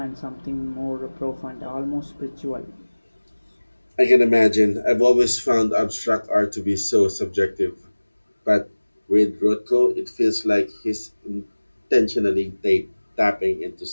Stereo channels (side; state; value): both; inverted; correlation -1.00